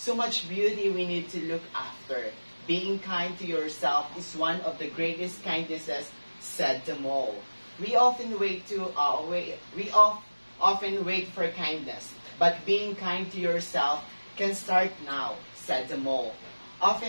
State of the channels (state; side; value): inverted; both; correlation -1.00